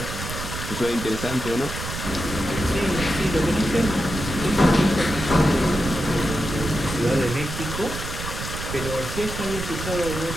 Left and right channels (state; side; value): noise; right; rumble, 7 dB below the sound